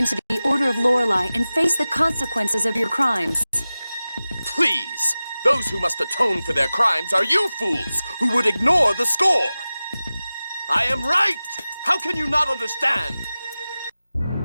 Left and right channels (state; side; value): inverted; both; correlation -0.96